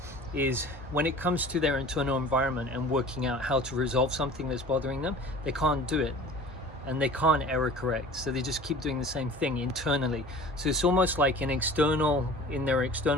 is when it comes to their internal environment and working out how to resolve something that's bothering them, they can't do it, and they can't error correct, so they just keep doing the same thing internally. So it's almost like in their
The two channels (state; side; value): normal; both; correlation 0.42